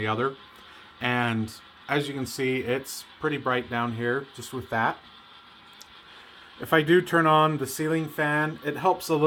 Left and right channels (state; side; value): identical; both; correlation 1.00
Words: other. And as you can see, it's pretty bright down here just with that. If I do turn on the ceiling fan, it helps a